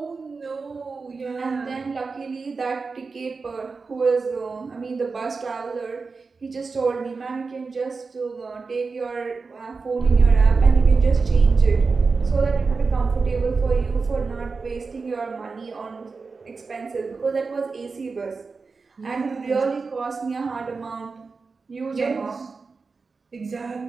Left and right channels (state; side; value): quieter; left; 4.5 dB